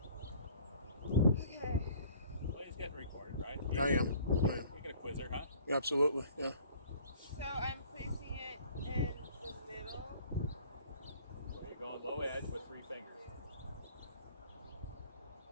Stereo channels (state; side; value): inverted; both; correlation -0.52